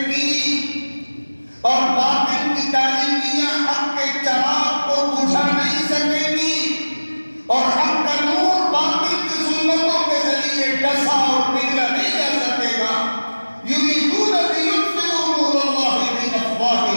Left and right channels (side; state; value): both; inverted; correlation -1.00